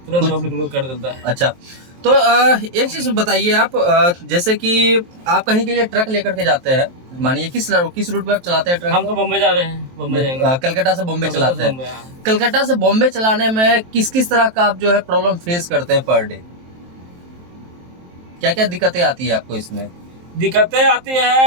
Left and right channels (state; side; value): late; left; 23 ms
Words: तुरंत पब्लिक लोग कर देता है। अच्छा, तो एक चीज बताइए आप, जैसे कि आप कहीं के लिए ट्रक लेकर के जाते हैं, मानिए किस रूट पे आप चलाते हैं ट्रक? हम तो बम्बई जा रहे हैं, बम्बई जाएंगे। कलकत्ता से बॉम्बे चलाते हैं। कलकत्ता से बॉम्बे चलाने में किस किस तरह का आप जो है प्रॉब्लम फेस करते हैं पर डे? क्या क्या दिक्कतें आती है आपको इसमें? दिक्कतें आती